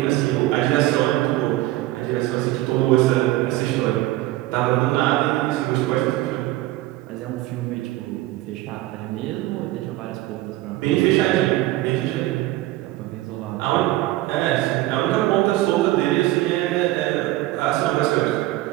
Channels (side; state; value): left; quieter; 16.9 dB